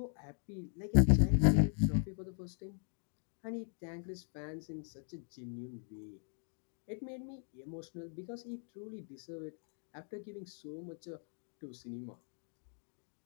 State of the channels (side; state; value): right; silent; 52 dB below the other